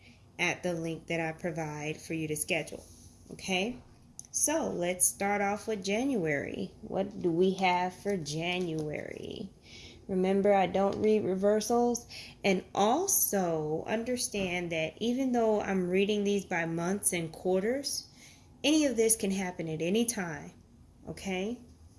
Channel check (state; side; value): identical; both; correlation 1.00